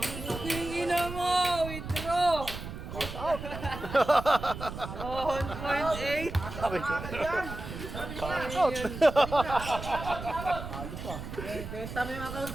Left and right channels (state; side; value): noise; right; rumble, 9 dB below the sound